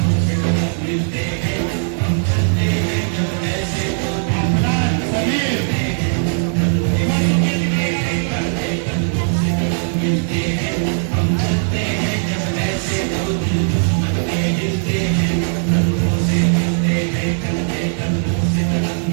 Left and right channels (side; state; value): left; silent; digital silence